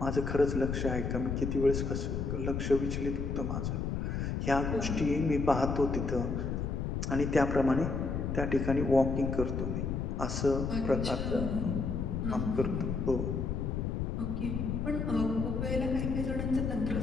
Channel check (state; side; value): noise; left; rumble, 1 dB below the sound